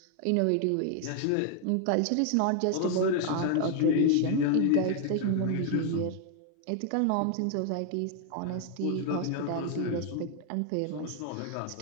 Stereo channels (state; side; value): different; both; correlation 0.00